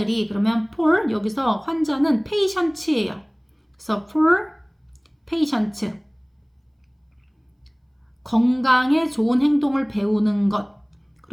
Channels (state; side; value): identical; both; correlation 1.00